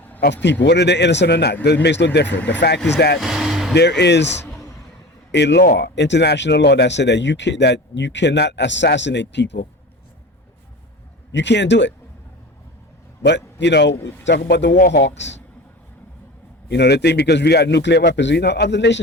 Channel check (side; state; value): both; normal; correlation 0.34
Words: of people, whether they're innocent or not. It makes no difference. The fact is that there is a law, international law, that said that you cannot assassinate people. You can't do it. But talk about the war hawks. They think because we got nuclear weapons, other